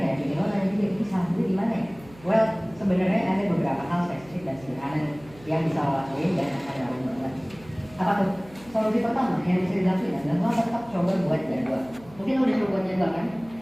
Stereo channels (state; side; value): noise; right; hum, 22 dB below the sound